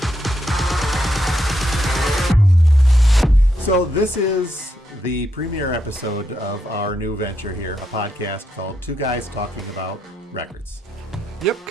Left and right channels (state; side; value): normal; both; correlation 0.80